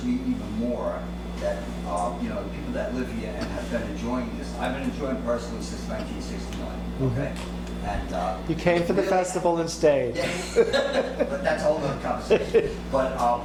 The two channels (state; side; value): identical; both; correlation 1.00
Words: me even more that, the people that live here and have been enjoying this, I've been enjoying personally since 1969, okay? And You came for the festival and stayed. but that's a whole other conversation. But